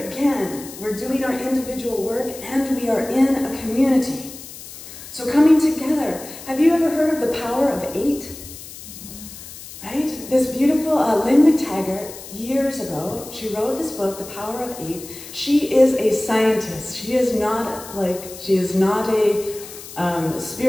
again, we're doing our individual work and we are in a community. So coming together, have you ever heard of the power of 8? Right? This beautiful Lynn McTaggart, years ago, she wrote this book, The Power of 8. She is a scientist. She is not a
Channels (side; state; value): left; noise; hiss, 14 dB below the sound